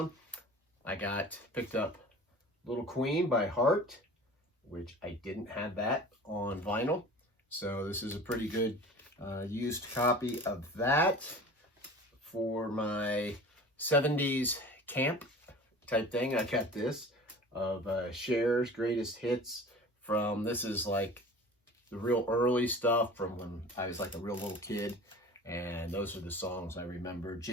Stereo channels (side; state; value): both; normal; correlation 0.40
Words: I picked up Little Queen by Heart, which I didn't have that on vinyl. So this is a pretty good used copy of that for my 70s camp type thing. I got this of Cher's Greatest Hits this is like the real early stuff from when I was like a real little kid. And those are the songs I remember: